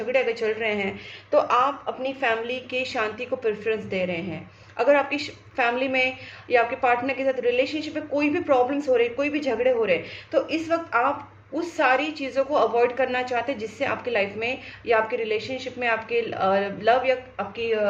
अगर चल रहे हैं, तो आप अपनी फैमिली की शांति को प्रेफरेंस दे रहे हैं। अगर आपकी फैमिली में या आपके पार्टनर के साथ रिलेशनशिप में कोई भी प्रॉब्लम्स हो रहे, कोई भी झगड़े हो रहे, तो इस वक्त आप उस सारी चीज़ों को अवॉइड करना चाहते हैं, जिससे आपकी लाइफ में या आपके रिलेशनशिप में, आपके लव या आपकी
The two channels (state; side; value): identical; both; correlation 1.00